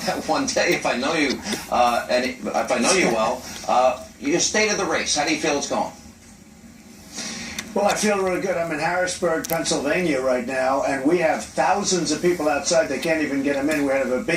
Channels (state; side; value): identical; both; correlation 1.00